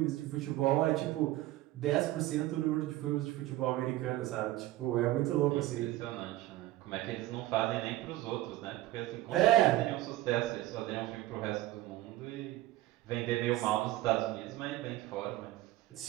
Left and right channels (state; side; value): quieter; left; 16.2 dB